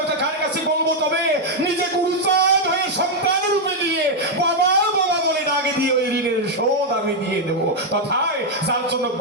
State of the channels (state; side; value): normal; both; correlation 0.00